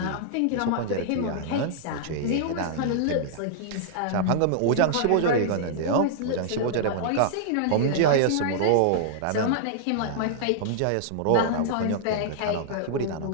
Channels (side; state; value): both; different; correlation -0.01